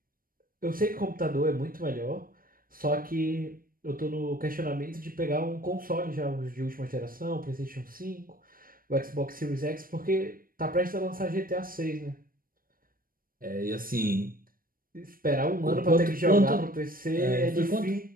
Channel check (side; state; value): left; late; 0.41 ms